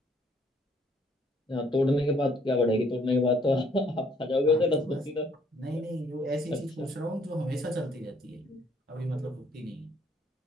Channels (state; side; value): normal; both; correlation 0.64